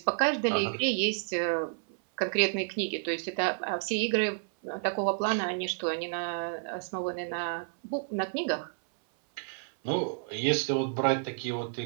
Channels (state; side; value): silent; left; 58 dB below the other